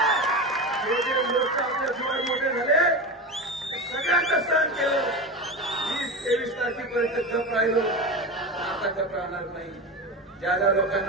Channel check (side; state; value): both; normal; correlation 0.23